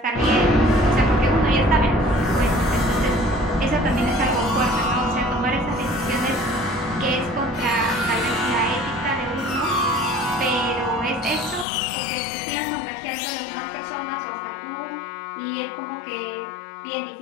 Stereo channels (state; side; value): drops out; right; at 11.7 s